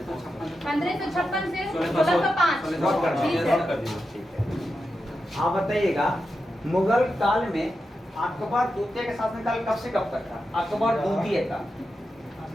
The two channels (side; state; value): both; normal; correlation 0.89